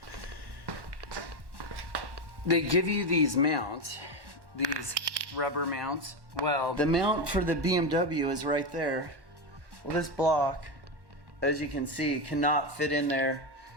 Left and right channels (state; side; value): late; left; 1.1 ms